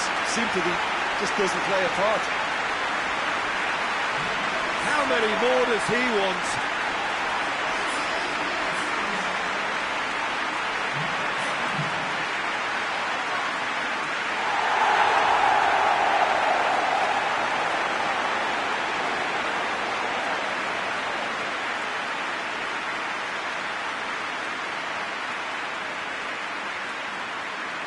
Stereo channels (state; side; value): identical; both; correlation 1.00